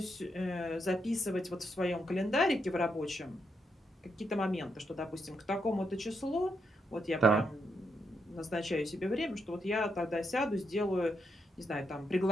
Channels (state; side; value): normal; both; correlation 0.81